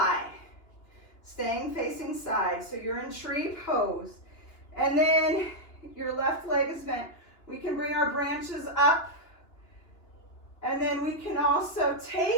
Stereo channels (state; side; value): late; right; 2.9 ms